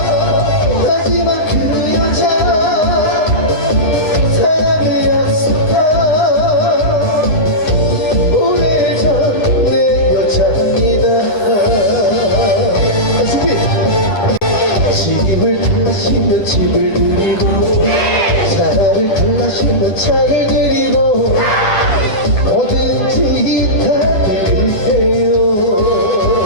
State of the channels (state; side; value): late; right; 9.8 ms